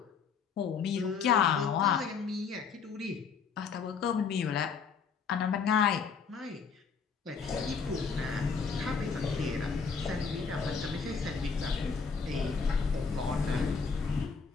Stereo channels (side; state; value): right; quieter; 5.7 dB